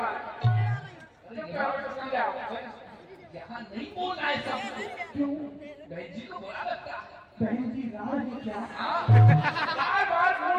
यहाँ नहीं बोलना है सब। क्यों? बहन जी को बुरा लगता है। बहन जी राड़ है क्या? हाँ? बार-बार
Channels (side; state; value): both; identical; correlation 1.00